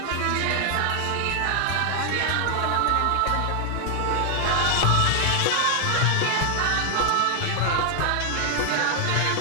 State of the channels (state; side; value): different; both; correlation 0.00